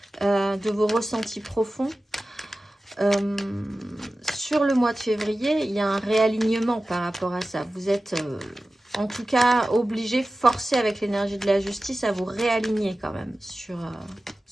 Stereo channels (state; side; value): normal; both; correlation 0.95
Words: de vos ressentis profonds. Sur le mois de février, il y a un réalignement par rapport à ça. Vous êtes... en tout cas, obligé, forcé avec l'énergie de la justice à vous réaligner quand même. Sur,